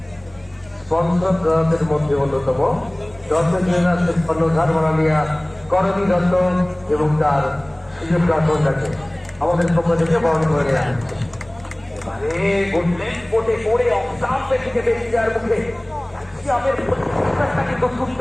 স্পন্সরদের মধ্যে অন্যতম কর্ণধার মাননীয়া করণী দত্ত এবং তার সুযোগ কন্যাকে আমাদের পক্ষ থেকে বরণ করে নেওয়া হচ্ছে। এবারে ঘুরলেন কোটে পড়ে অফসাম্পের দিকে বেশি যাওয়ার মুখে ক্যালসিয়ামের প্রতিষ্ঠানটা কিন্তু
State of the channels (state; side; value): noise; right; rumble, 28 dB below the sound